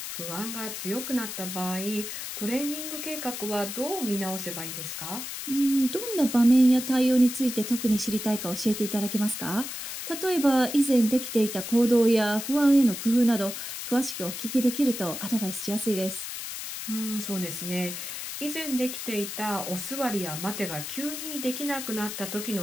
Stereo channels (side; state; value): left; noise; hiss, 7 dB below the sound